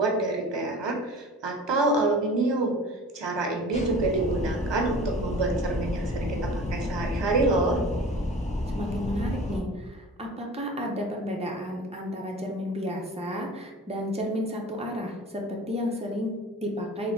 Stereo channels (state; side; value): normal; both; correlation 0.40